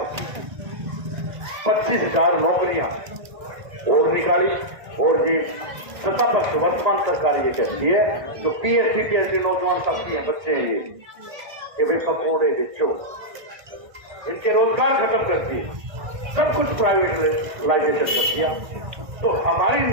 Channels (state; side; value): late; left; 1.6 ms